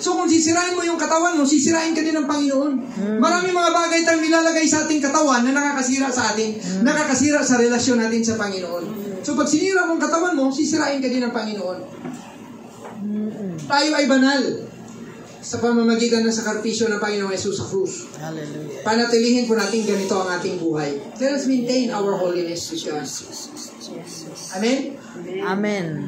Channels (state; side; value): identical; both; correlation 1.00